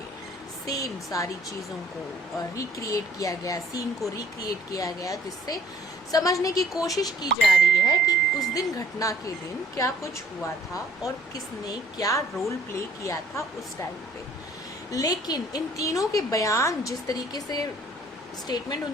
सेम सारी चीज़ों को रिक्रिएट किया गया, सीन को रिक्रिएट किया गया, जिससे समझने की कोशिश की जा रही है कि उस दिन घटना के दिन क्या कुछ हुआ था और किसने क्या रोल प्ले किया था उस टाइम पे। लेकिन इन तीनों के बयान, जिस तरीके से स्टेटमेंट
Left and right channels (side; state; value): both; normal; correlation 0.57